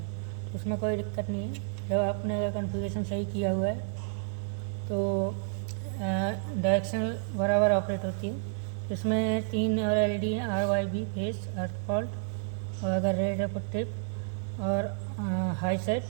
उसमें कोई दिक्कत नहीं है। जब आपने अगर कॉन्फ़िगरेशन सही किया हुआ है तो डायरेक्शनल बराबर ऑपरेट होती है। इसमें 3 और LED हैं, RYB फेस, अर्थ फॉल्ट और अगर रेड है ट्रिप और हाई सेट,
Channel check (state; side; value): silent; left; 58 dB below the other